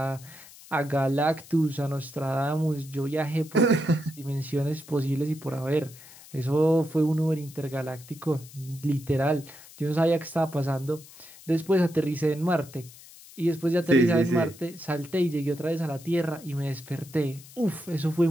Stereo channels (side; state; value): left; noise; hiss, 20 dB below the sound